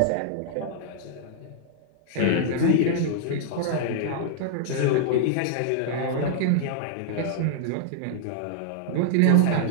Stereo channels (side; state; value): both; different; correlation -0.01